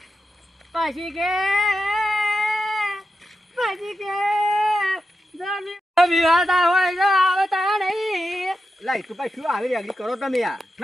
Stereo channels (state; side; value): normal; both; correlation 0.89